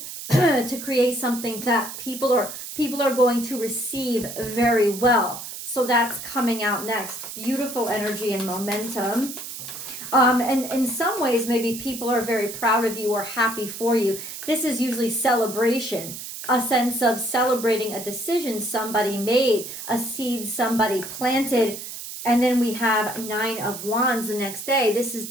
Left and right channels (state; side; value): noise; right; hiss, 9 dB below the sound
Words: to create something that people are going to receive very well. So that's coming out next. Beautiful energy and momentum. And in some ways, maybe people are very proud of you or happy for you. This is usually celebration, a sense of celebrating a decision somebody made, a seed somebody planted. And then we have 9 of Wands the next day. This is